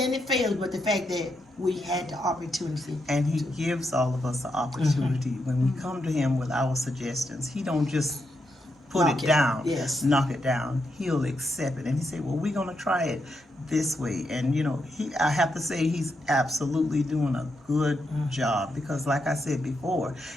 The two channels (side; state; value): both; normal; correlation 0.82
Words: it fails. But the fact that we had the opportunity. And he gives all of us the opportunity. When we come to him with our suggestions, he don't just put Knock it it. down, Yes. knock it down. He'll accept it. And he say, well, we're going to try it this way. And, I have to say he's absolutely doing a good job because, like I said before,